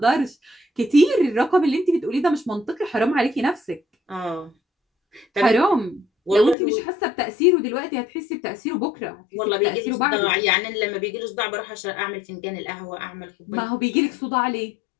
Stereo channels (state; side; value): drops out; right; at 6.6 s